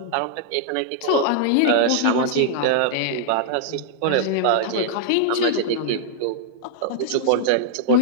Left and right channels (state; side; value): different; both; correlation -0.01